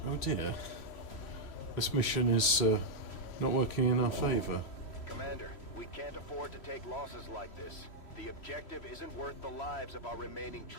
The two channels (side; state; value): right; late; 3.1 ms